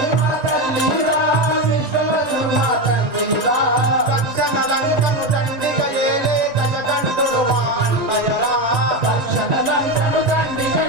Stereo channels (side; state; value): left; late; 1.9 ms